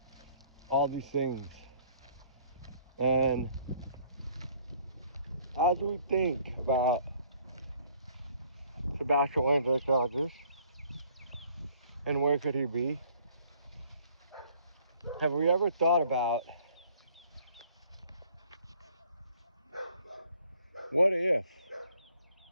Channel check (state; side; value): inverted; both; correlation -0.59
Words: all these things. And as we think about Sebastian Rogers and where could he be, have we ever thought about what if